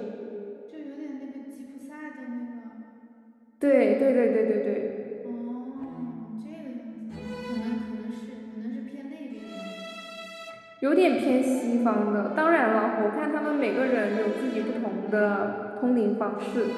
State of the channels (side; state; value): both; identical; correlation 1.00